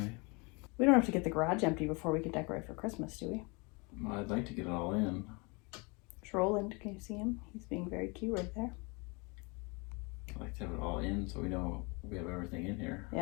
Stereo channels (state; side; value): quieter; right; 29.4 dB